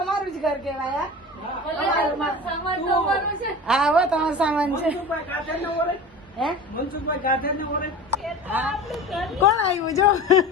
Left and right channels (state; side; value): normal; both; correlation 0.34